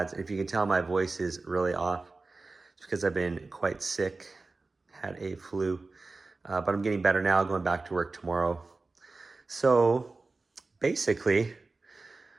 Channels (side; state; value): left; quieter; 3.6 dB